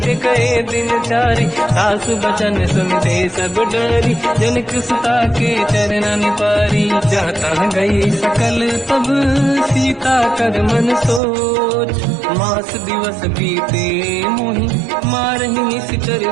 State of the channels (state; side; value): drops out; left; at 11.2 s